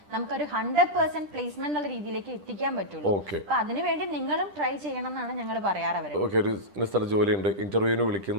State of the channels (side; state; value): left; late; 10 ms